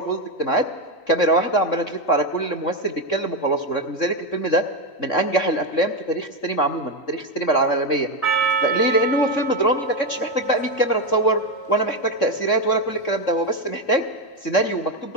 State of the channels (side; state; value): right; late; 3.6 ms